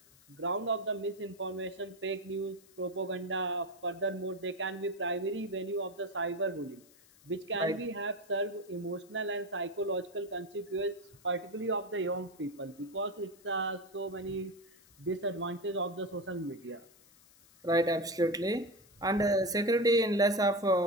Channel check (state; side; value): noise; left; hiss, 26 dB below the sound